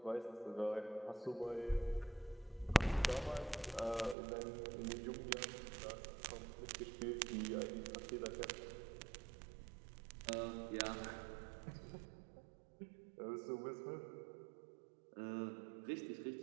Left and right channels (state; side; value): drops out; left; at 4.2 s